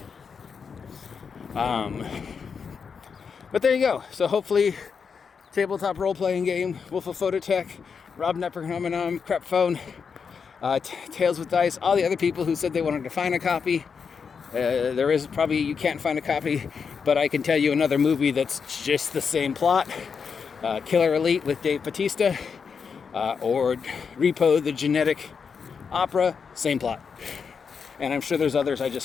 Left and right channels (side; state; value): right; quieter; 6.0 dB